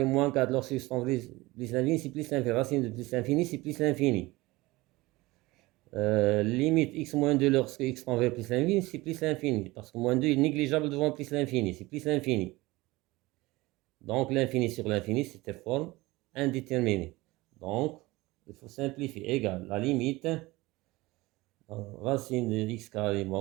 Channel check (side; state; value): left; quieter; 20.7 dB